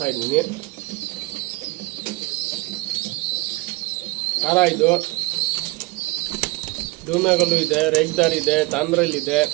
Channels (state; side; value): quieter; left; 22.7 dB